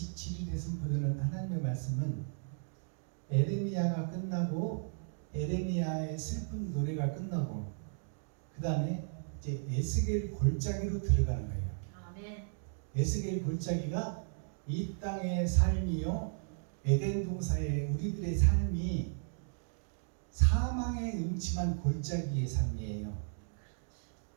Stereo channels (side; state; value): left; silent; digital silence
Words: 선포되는 하나님의 말씀은 에레미야가 끝나고 에레미야의 슬픈 노래가 끝나고 그 다음에 이제 에스겔 골짜기로 들어가는 거예요. 아멘. 에스겔 골짜기가 이 땅의 삶이요 에덴 동산의 우리들의 삶이 사망의 음침한 골짜기의 삶이에요.